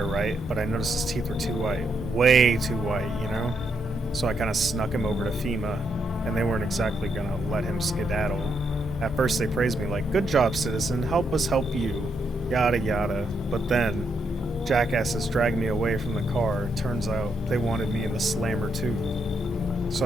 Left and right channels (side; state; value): both; normal; correlation 0.78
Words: right? But I noticed his teeth were too white. Way too white, you know? So I kind of snuck him over to FEMA, and they weren't exactly gonna let him skedaddle. At first they praised me like, good job, citizen, help us help you. Yada yada. But then, jackasses dragged me away from the car. Turns out, they wanted me in the slammer too.